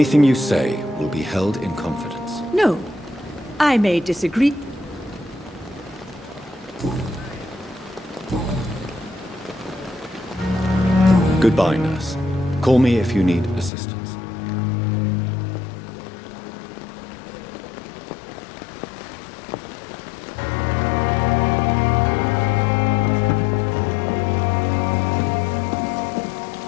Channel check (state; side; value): drops out; right; at 13.7 s